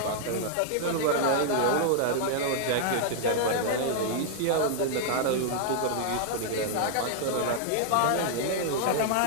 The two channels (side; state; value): both; different; correlation -0.01